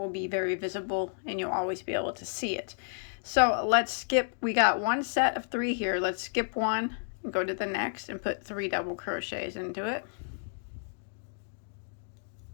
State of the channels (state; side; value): silent; right; digital silence